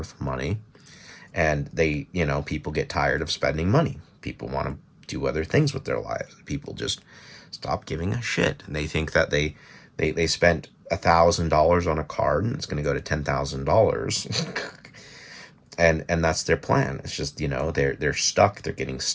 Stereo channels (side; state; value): both; identical; correlation 1.00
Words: money. And people get tired of spending money. People want to do other things with their lives. People just stop giving a shit. And they think that they spent $1,000 on a card and it's going to go to $10,000. and that's their plan. It's just, they're stuck, they're getting